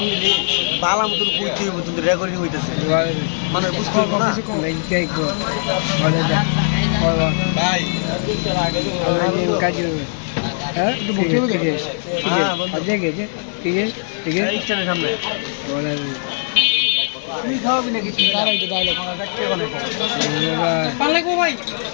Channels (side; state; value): right; silent; 59 dB below the other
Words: দিলি বালা মতন কইতে হইব, কিন্তু রেকর্ডিং হইতেছে, মানে বুঝতে পারবো না। ভাই সামনে তুই খাওয়াবি নাকি?